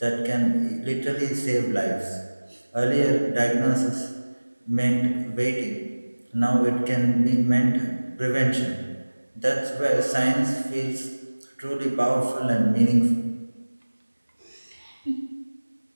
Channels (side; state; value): both; inverted; correlation -1.00